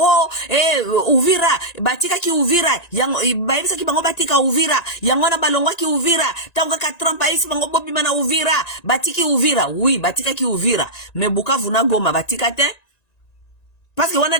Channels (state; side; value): late; right; 1.9 ms